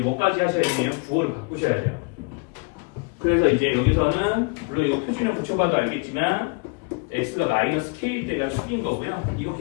하셔야 되냐면 부호를 바꾸셔야 돼요. 그래서 이제 여기서는 물론 이거 표준형 붙여봐도 알겠지만 x가 마이너스 k일 때가 축인 거고요. 이거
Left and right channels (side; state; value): right; quieter; 30.8 dB